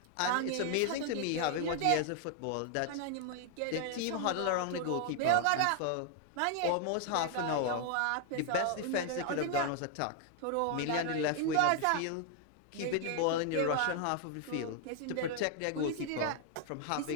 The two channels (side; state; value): both; different; correlation 0.00